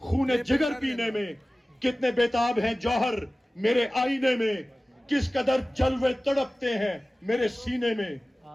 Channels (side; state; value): both; normal; correlation 0.97